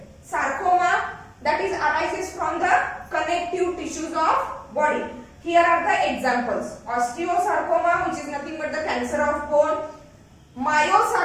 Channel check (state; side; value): identical; both; correlation 1.00